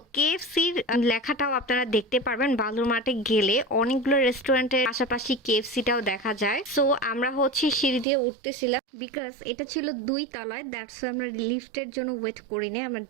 কেএফসির লেখাটাও আপনারা দেখতে পারবেন বালুর মাঠে গেলে। অনেকগুলো রেস্টুরেন্টের পাশাপাশি কেএফসিটাও দেখা যায়। সো আমরা হচ্ছে সিঁড়ি দিয়ে উঠতেছিলাম, বিকজ এটা ছিল 2 তলায়, দ্যাটস আমরা লিফটের জন্য ওয়েট করিনি, আমরা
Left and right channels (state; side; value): drops out; left; at 8.1 s